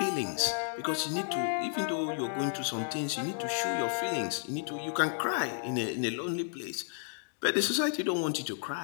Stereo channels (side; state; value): right; silent; digital silence